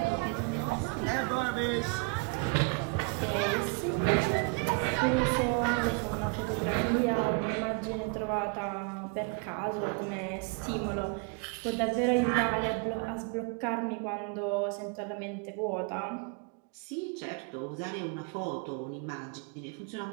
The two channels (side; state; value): left; quieter; 32.6 dB